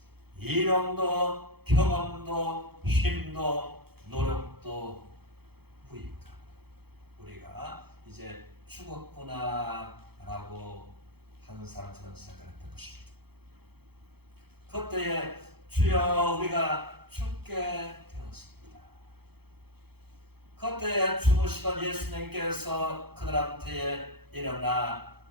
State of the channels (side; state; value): left; late; 0.97 ms